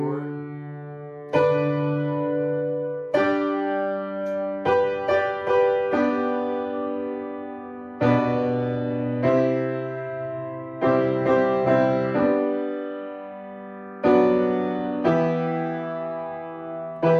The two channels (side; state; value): both; identical; correlation 1.00